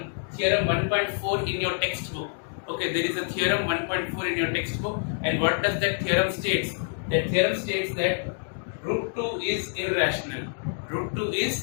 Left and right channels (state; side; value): silent; right; digital silence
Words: 1.4 in your textbook. Okay, there is a theorem 1.4 in your textbook, and what does that theorem states? That theorem states that root 2 is irrational. Root 2 is